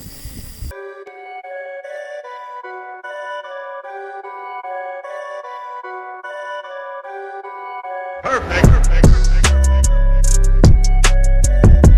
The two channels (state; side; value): identical; both; correlation 1.00